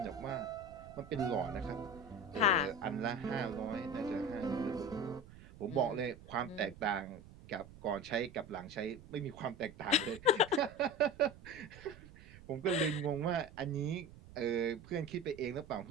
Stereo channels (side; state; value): right; noise; rumble, 18 dB below the sound